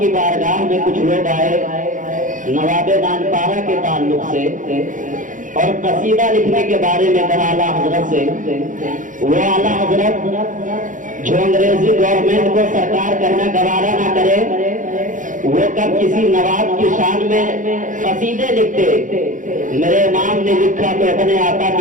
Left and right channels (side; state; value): left; late; 0.38 ms